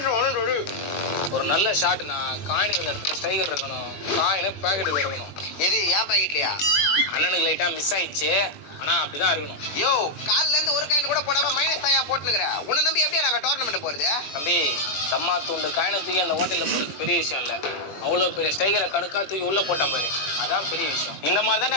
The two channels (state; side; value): late; right; 20 ms